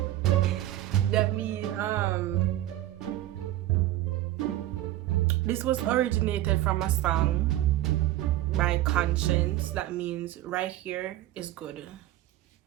this was originated from a song by Conscience. That means right here is good.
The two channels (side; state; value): left; quieter; 14.7 dB